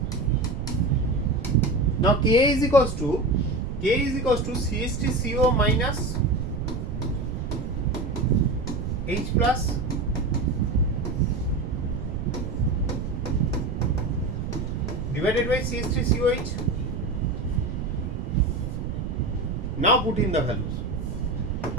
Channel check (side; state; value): right; noise; rumble, 4 dB below the sound